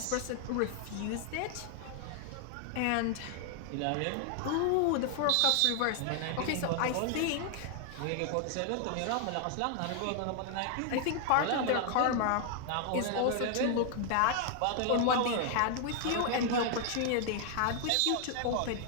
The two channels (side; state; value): both; different; correlation 0.00